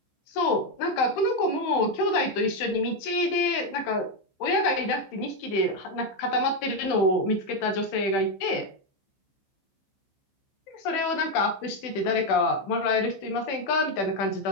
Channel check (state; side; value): late; right; 15 ms